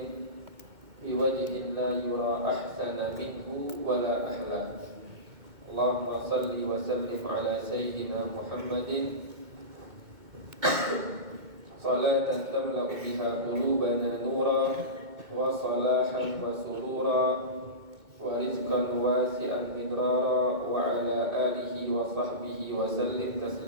biwajhin la yura ahsana minhu wala ahla. Allahumma salli wa sallim ala sayyidina Muhammadin salatan tamla'u biha qulubana nura wa salahan wa surura wa rizqan wasi'an midrara wa ala alihi wa sahbihi wa sallim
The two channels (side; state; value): left; late; 2.2 ms